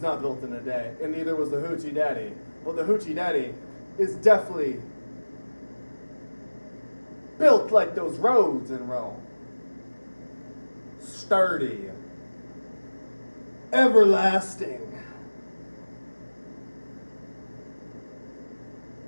not built in a day, and neither was the Hoochie Daddy. But the Hoochie Daddy is definitely built like those roads in Rome. Sturdy. Everlasting.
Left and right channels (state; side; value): inverted; both; correlation -1.00